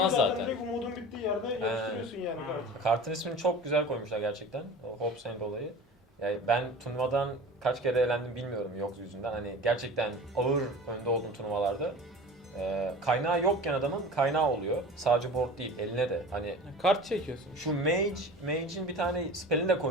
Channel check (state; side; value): normal; both; correlation 0.37